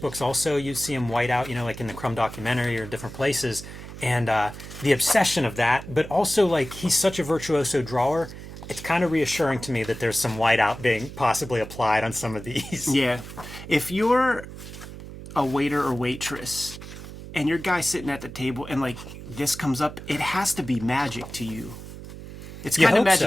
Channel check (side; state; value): right; noise; hum, 13 dB below the sound